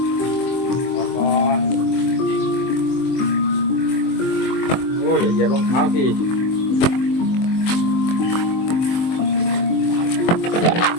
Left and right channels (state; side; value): late; right; 23 ms